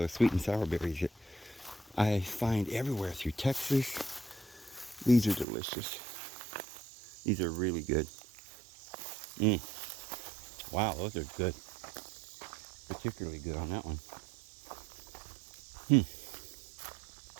sweet and sour berries that I find everywhere through Texas. These are delicious. These are really good. Wow, those are good. Particularly good on that one.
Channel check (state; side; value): drops out; left; at 5.5 s